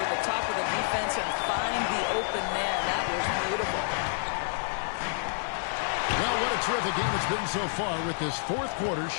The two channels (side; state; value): right; silent; digital silence